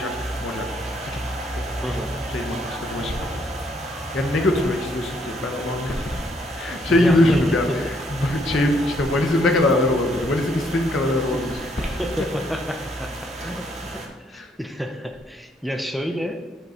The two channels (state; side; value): normal; both; correlation 0.70